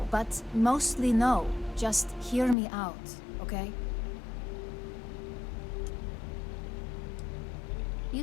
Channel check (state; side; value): drops out; right; at 2.6 s